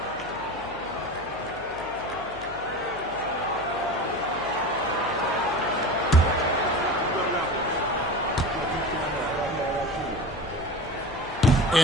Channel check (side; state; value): left; noise; hum, 20 dB below the sound